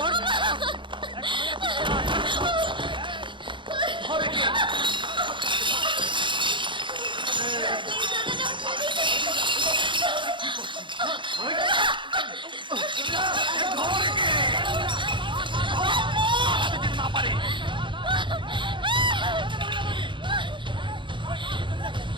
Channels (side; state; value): left; late; 0.23 ms